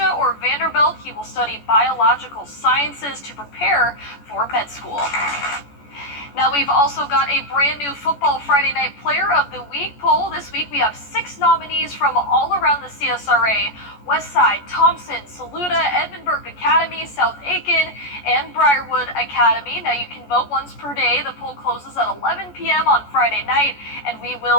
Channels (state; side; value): late; right; 14 ms